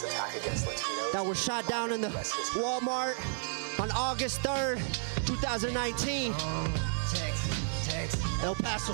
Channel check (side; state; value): left; silent; digital silence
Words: attack against Latinos. that were shot down in the Walmart on August 3rd, 2019. El Paso